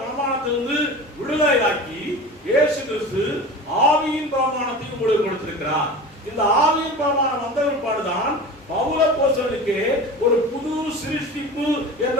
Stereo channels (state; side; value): normal; both; correlation 0.34